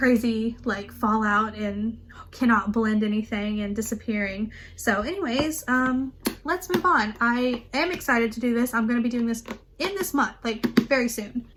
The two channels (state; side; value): identical; both; correlation 1.00